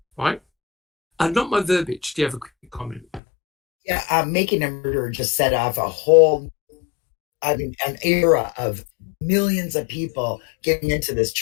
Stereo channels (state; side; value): drops out; right; at 3.2 s